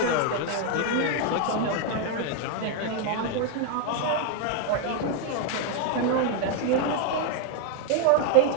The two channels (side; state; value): both; different; correlation 0.00